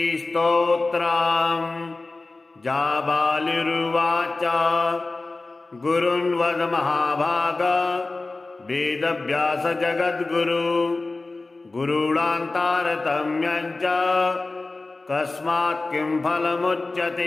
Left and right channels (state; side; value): quieter; right; 3.4 dB